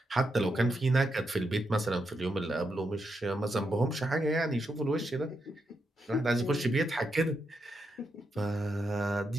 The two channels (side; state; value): both; normal; correlation 0.83